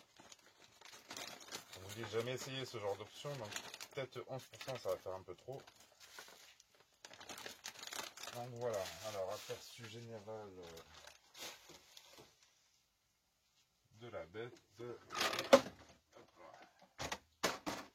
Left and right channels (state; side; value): identical; both; correlation 1.00